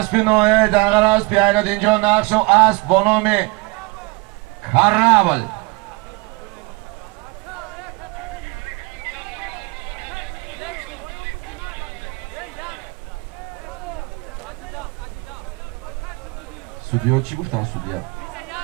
نویه دنگر اسب ایناد اینجا نقش و اسب با نام کرابل. سودیو چی گفتن سودیو؟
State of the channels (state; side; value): quieter; left; 26.3 dB